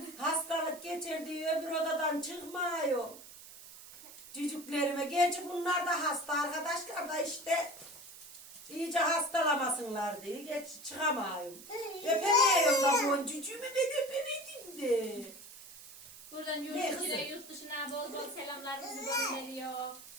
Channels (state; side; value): noise; right; hiss, 17 dB below the sound